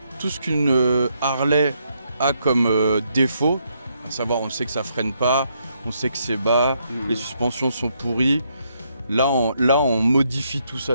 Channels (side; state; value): both; inverted; correlation -0.75